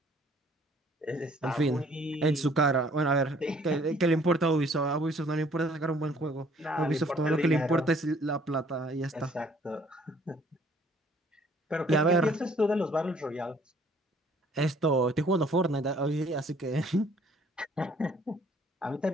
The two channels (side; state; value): both; normal; correlation 0.59